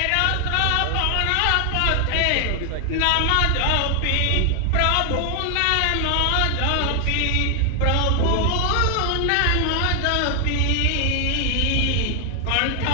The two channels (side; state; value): both; different; correlation 0.00